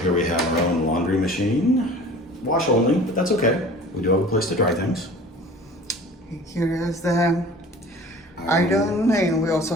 here we have our own laundry machine, wash only, but that's okay. We do have a place to dry things. Here is the iron, and we also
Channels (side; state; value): both; normal; correlation 0.44